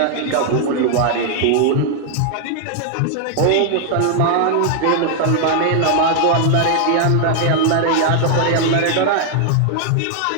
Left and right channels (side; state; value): both; different; correlation 0.00